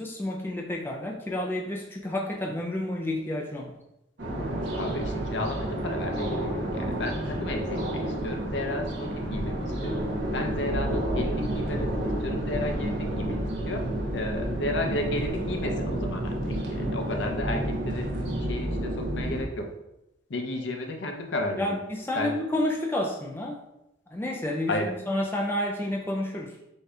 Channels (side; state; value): both; normal; correlation 0.52